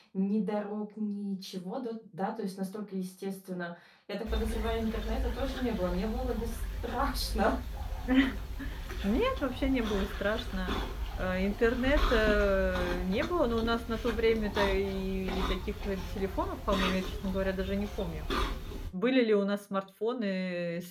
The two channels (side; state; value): both; identical; correlation 1.00